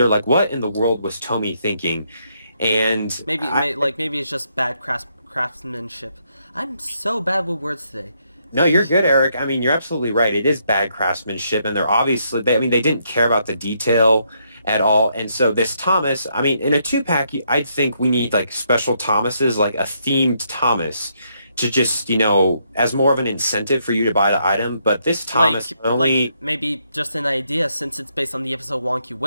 what in the world was Tommy thinking, and maybe it's just bad craftsmanship. I'm so bad with words today. No, you're good, Eric. I mean, you're absolutely right. It is bad craftsmanship, and they're obviously they didn't care about the detail at all. And so this Thomas, I mean, in a 2-pack, I'd think we need special Thomases, a themed Thomas, to just as more of an incentive for you to buy the item. But this Thomas maybe just an idea, since it's based on the episode Wonky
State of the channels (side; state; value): both; inverted; correlation -0.75